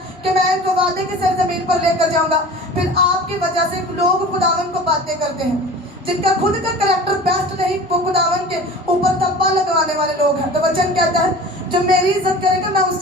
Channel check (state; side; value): normal; both; correlation 0.39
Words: कि मैं इनको वादे की सरजमीन पर लेकर जाऊंगा। फिर आपकी वजह से लोग खुदावंद को बातें करते हैं। जिनका खुद का कैरेक्टर बेस्ट नहीं, वो खुदावंद के ऊपर धब्बा लगवाने वाले लोग हैं। तो वचन कहता है जो मेरी इज्जत करेगा मैं